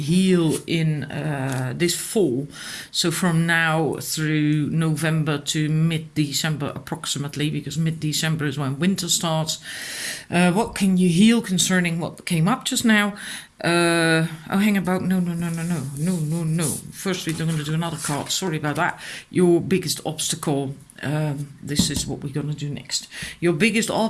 in this fall? So from now through November to mid-December approximately, because mid-December is when winter starts. What can you heal concerning what came up just now? Hang about. No. First, we're going to do another card. Sorry about that. Your biggest obstacle. This is what we're going to do next. Your biggest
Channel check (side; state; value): both; identical; correlation 1.00